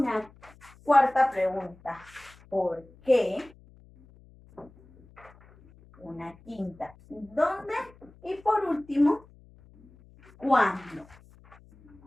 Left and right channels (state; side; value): noise; left; hum, 25 dB below the sound